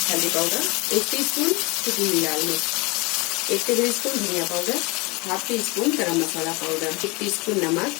हल्दी पाउडर, 1 टीस्पून कश्मीरी लाल मिर्च, 1 टेबल स्पून धनिया पाउडर, हाफ टी स्पून गरम मसाला पाउडर, 1 टीस्पून नमक,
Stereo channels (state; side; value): quieter; right; 26.1 dB